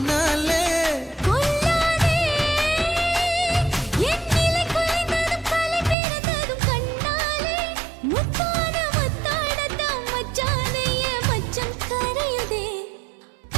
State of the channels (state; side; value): drops out; left; at 6.0 s